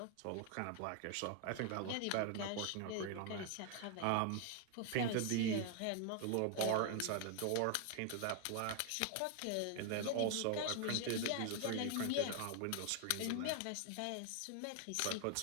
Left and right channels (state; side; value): different; both; correlation 0.00